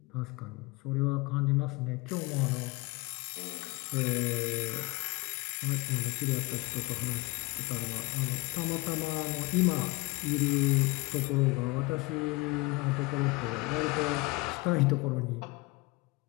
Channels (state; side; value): quieter; right; 24.0 dB